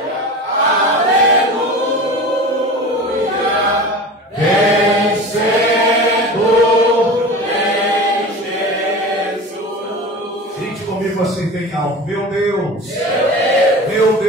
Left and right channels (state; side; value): normal; both; correlation 0.33